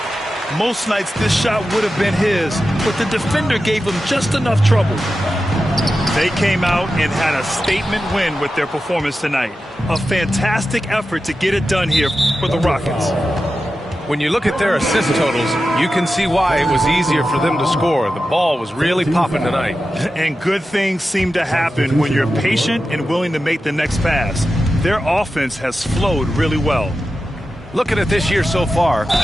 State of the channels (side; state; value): both; normal; correlation 0.92